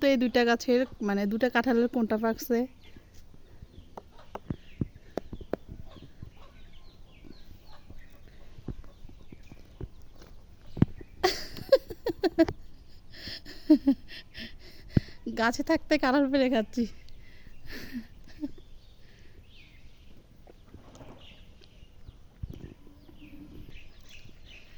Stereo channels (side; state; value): both; identical; correlation 1.00